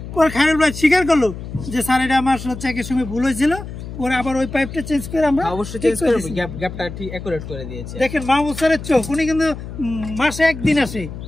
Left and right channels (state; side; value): noise; left; hum, 10 dB below the sound